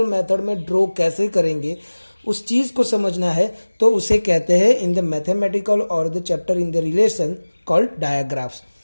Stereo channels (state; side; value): inverted; both; correlation -1.00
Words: मेथड में ड्रॉ कैसे करेंगे उस चीज़ को समझना है तो उसे कहते हैं इन द मैथमेटिकल और the chapter in the relation called digraphs.